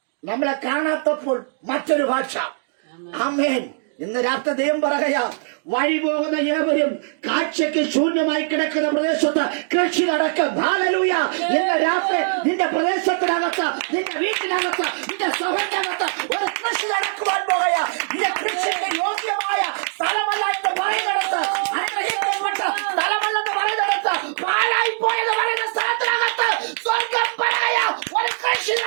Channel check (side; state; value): left; silent; digital silence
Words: നമ്മളെ കാണാത്തപ്പോൾ മറ്റൊരു ഭാഷ. ആമേൻ. ഇന്ന് രാത്രി ദൈവം പറയുക, വഴി പോകുന്ന ഏവരും കാഴ്ചയ്ക്ക് ശൂന്യമായി കിടക്കുന്ന പ്രദേശത്ത് കൃഷി നടക്കും. ഹല്ലേലൂയ. ഇന്ന് രാത്രി നിന്റെ പ്രദേശത്തിനകത്ത്, നിന്റെ വീട്ടിനകത്ത്, നിന്റെ സഭയ്ക്കകത്ത് ഒരു കൃഷി നടക്കുവാൻ പോകുക. നിന്റെ കൃഷിക്ക് യോഗ്യമായ സ്ഥലമല്ല എന്ന് പറയുന്നിടത്ത്, അനുഗ്രഹിക്കപ്പെട്ട സ്ഥലമല്ലെന്ന് പറയുന്നിടത്ത്, പാഴായി പോയെന്ന് പറയുന്ന സ്ഥലത്തിനകത്ത് സ്വർഗം പറയാ ഒരു കൃഷി